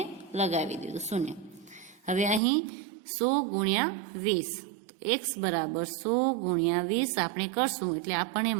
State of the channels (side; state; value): left; drops out; at 2.4 s